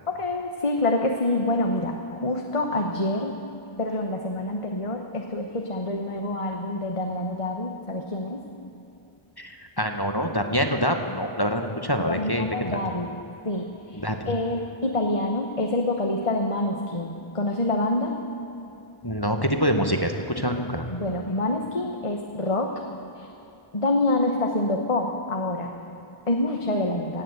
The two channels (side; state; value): right; late; 1.1 ms